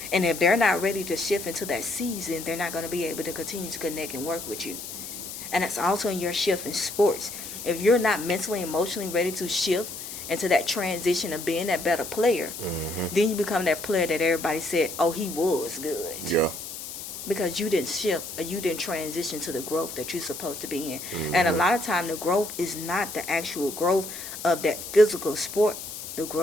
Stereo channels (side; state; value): left; noise; hiss, 9 dB below the sound